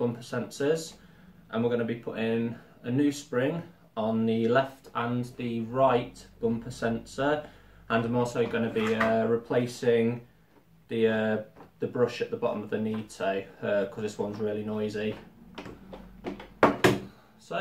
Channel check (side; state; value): both; identical; correlation 1.00